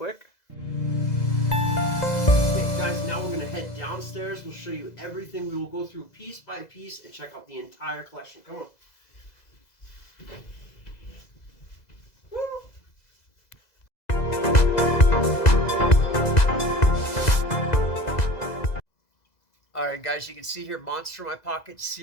Okay, guys, now we're going to head downstairs and show you everything. We will go through piece by piece and check out the entire collection. Come on. Woo! Alright guys, you can see here Monster in My Pocket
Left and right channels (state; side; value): late; right; 2.0 ms